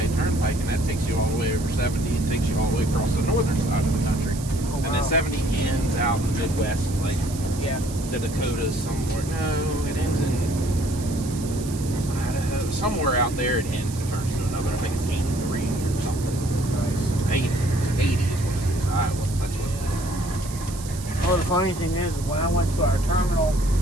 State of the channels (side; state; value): right; noise; hiss, 14 dB below the sound